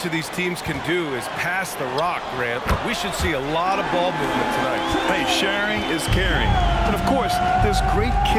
of these teams can do is pass the rock, Grant. We should see a lot of ball movement tonight. Hey, sharing is caring. And of course, there's great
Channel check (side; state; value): both; identical; correlation 1.00